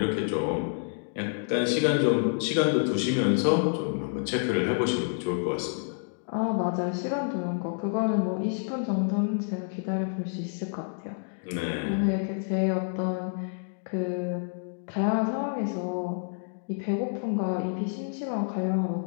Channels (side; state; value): right; silent; digital silence